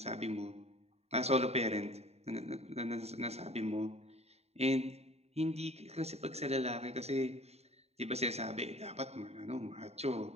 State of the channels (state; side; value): late; left; 0.30 ms